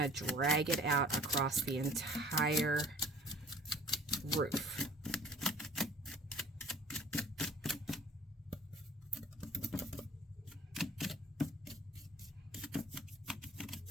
to drag it out across the entire roof.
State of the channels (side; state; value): both; normal; correlation 0.49